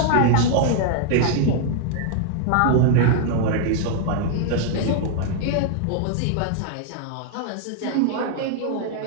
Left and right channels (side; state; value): both; different; correlation -0.01